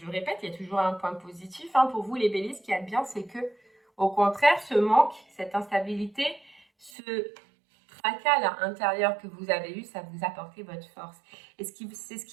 le répète, il y a toujours un point positif hein, pour vous les béliers, ce qu'il y a de bien, c'est que au contraire, ce manque, cette instabilité, ce tracas intérieur que vous avez eu, ça vous a apporté votre force. Et c'est ce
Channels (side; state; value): left; drops out; at 6.9 s